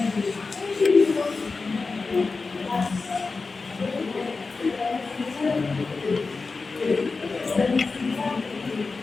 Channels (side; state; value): right; quieter; 4.2 dB